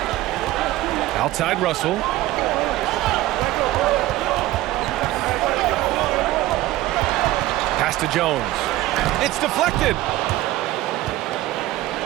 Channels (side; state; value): left; quieter; 16.3 dB